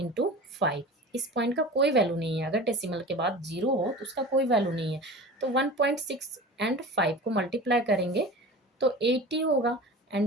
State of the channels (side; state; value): both; normal; correlation 0.36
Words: 5, इस पॉइंट का कोई वैल्यू नहीं है। अगर डेसिमल के बाद 0 हो तो उसका कोई वैल्यू नहीं है। तो 1.6 एंड 5 को मल्टीप्लाई करेंगे तो 80 होगा।